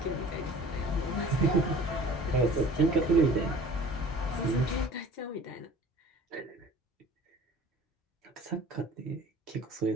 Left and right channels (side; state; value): both; normal; correlation 0.46